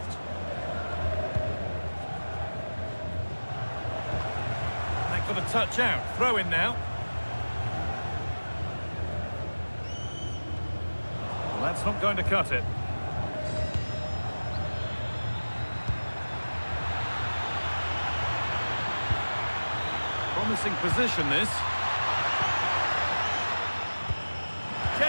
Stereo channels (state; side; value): inverted; both; correlation -1.00